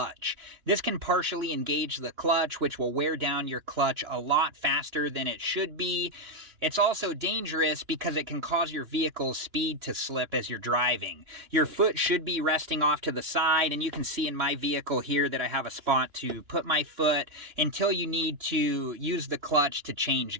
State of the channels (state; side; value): late; left; 2.9 ms